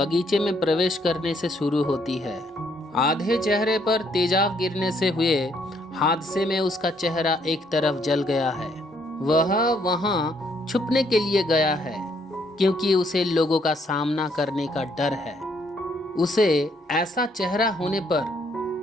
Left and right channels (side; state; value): both; normal; correlation 0.69